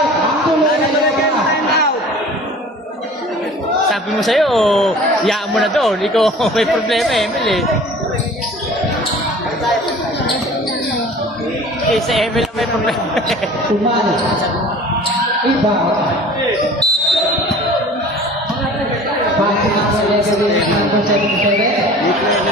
Ang tulo ay dalawa pa. Sabi mo sa'yo, yaan mo na doon. Ikaw may problema eh, Emil eh. Eh, sa Emil ang may problema eh. Tumalo. Iba. Passing number 11, number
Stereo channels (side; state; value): both; normal; correlation 0.44